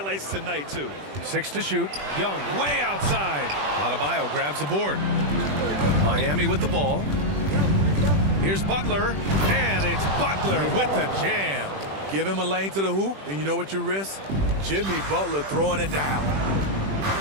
tonight, too. 6 to shoot. Young way outside. Adebayo grabs the board. Miami with the ball. Here's Butler, and it's Butler with the jam. Give him a lane to the hoop, and you know what you risk? Jimmy Butler throwing it down.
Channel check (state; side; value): late; left; 21 ms